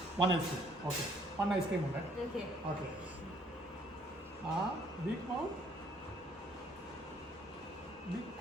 1 ഐസ്ക്രീം. ഓക്കെ 1 ഐസ്ക്രീം ഉണ്ട്. ഓക്കെ. ആ ബിഗ് മൗണ്ട്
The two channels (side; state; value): both; normal; correlation 0.63